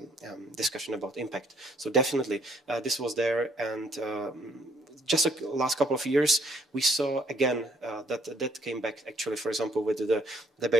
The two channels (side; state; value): both; normal; correlation 0.66